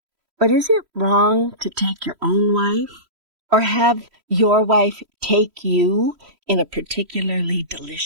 But is it wrong to take your own wife? Or have your wife take you in a particularly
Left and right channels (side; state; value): left; late; 3.1 ms